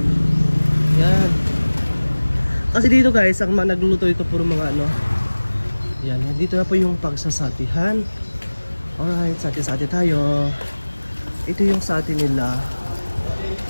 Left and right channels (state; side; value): inverted; both; correlation -1.00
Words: Yan. Kasi dito guys, ang mga nagluluto ito puro mga yan, dito na po yung pagsasatihan. Alright, sati-sati tayo. Ito yung sati nila.